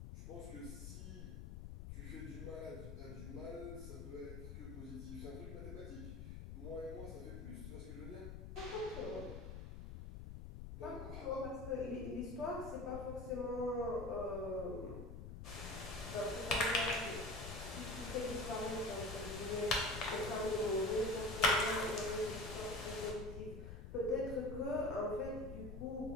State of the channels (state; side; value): noise; left; rumble, 8 dB below the sound